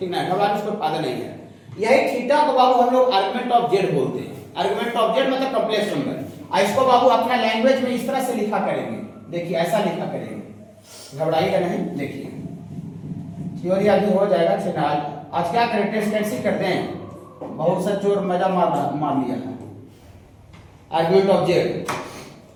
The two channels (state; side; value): identical; both; correlation 1.00